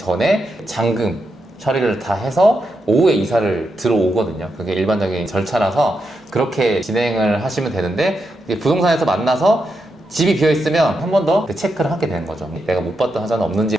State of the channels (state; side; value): normal; both; correlation 0.85